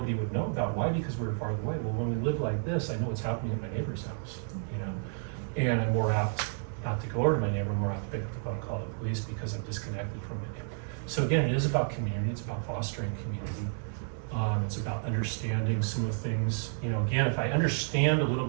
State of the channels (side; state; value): left; silent; 57 dB below the other